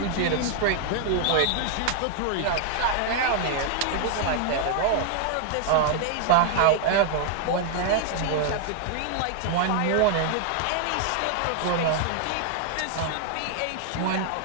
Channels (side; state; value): both; different; correlation 0.00